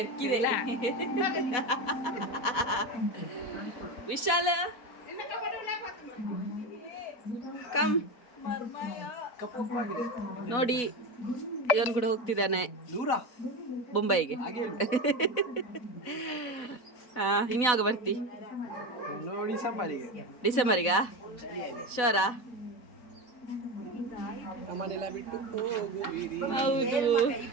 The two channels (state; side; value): late; right; 4.0 ms